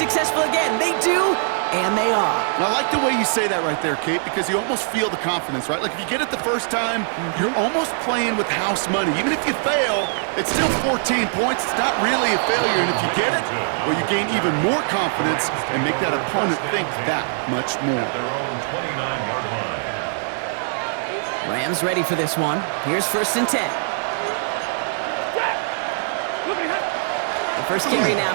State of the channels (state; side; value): silent; left; digital silence